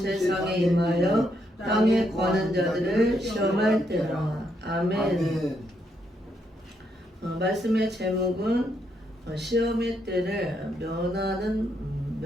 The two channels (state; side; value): normal; both; correlation 0.77